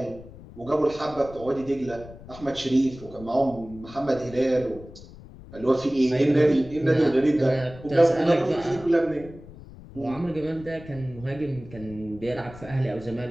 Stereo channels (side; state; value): left; noise; rumble, 17 dB below the sound